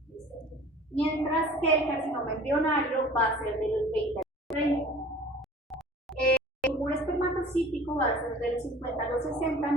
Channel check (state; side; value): normal; both; correlation 0.45